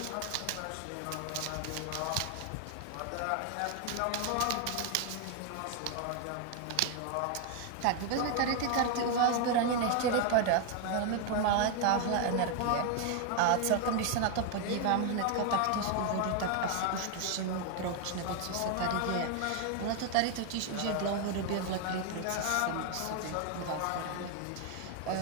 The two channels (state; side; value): different; both; correlation 0.01